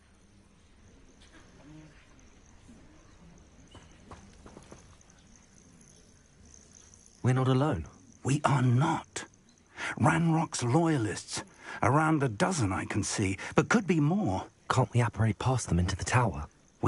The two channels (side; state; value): both; identical; correlation 1.00